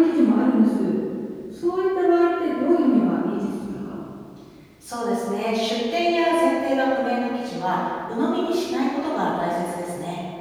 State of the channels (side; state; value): both; identical; correlation 1.00